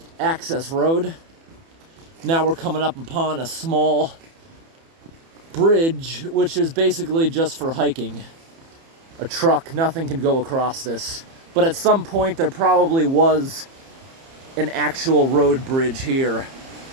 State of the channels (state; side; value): late; left; 30 ms